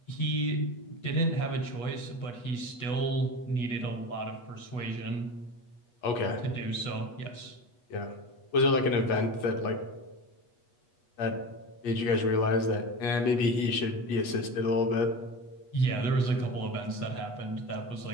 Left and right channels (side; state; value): right; late; 8.3 ms